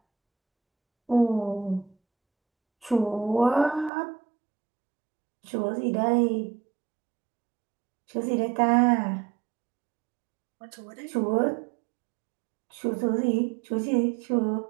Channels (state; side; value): drops out; left; at 3.9 s